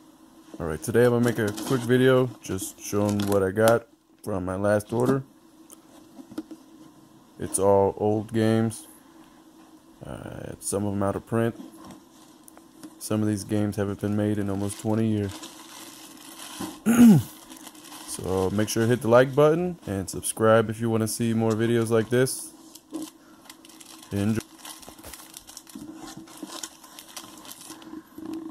Alright, today I'm going to make a quick video just showing what I got from my last order. It's all old games. Some of them out of print. Some of these games haven't been made in almost 20 years. So make sure to hit the like button and subscribe if you want to see more videos like this. Enjoy.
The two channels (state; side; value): identical; both; correlation 1.00